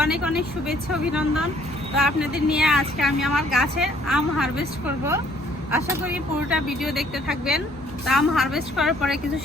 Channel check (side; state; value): both; normal; correlation 0.61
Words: অনেক অনেক শুভেচ্ছা, অভিনন্দন। তো আপনাদের নিয়ে আজকে আমি আমার গাছের আম হারভেস্ট করব। আশা করি পুরোটা ভিডিও দেখতে থাকবেন। তো আম হারভেস্ট করার পরে কিছু